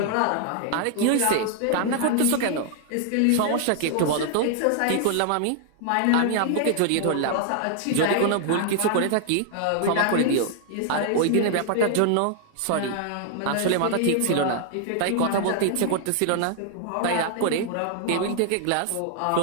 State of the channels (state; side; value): different; both; correlation 0.00